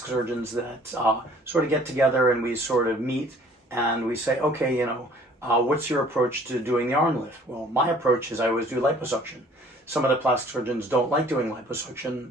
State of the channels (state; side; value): normal; both; correlation 0.54